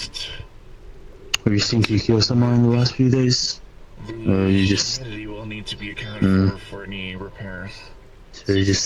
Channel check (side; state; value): both; identical; correlation 1.00